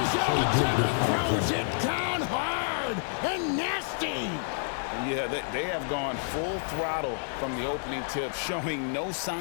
throws it down hard and nasty. Yeah, they have gone full throttle from the opening tip, showing no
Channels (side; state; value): right; silent; digital silence